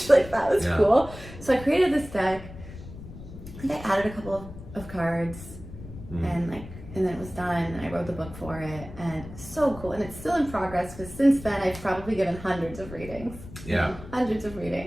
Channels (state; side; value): noise; left; rumble, 14 dB below the sound